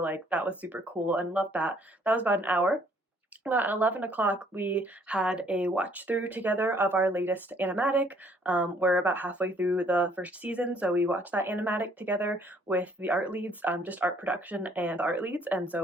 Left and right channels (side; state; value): both; normal; correlation 0.63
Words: that was super cool and loved that. That was about an hour. At 11 o'clock, we had a watch through together of our latest animatic. We're about halfway through the first season, so we watched that animatic together with the art leads, just art production and art leads, and